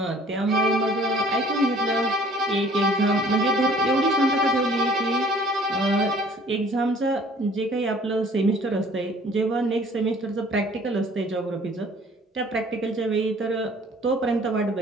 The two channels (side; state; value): both; normal; correlation 0.53